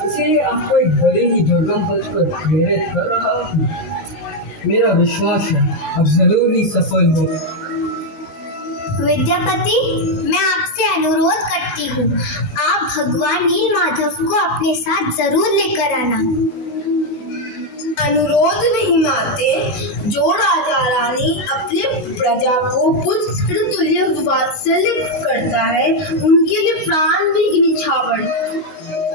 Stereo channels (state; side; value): late; right; 19 ms